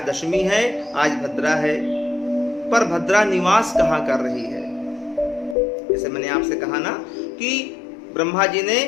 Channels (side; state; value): right; drops out; at 5.6 s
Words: दशमी है, आज भद्रा है, पर भद्रा निवास कहां कर रही है। जैसे मैंने आपसे कहा ना कि ब्रह्मा जी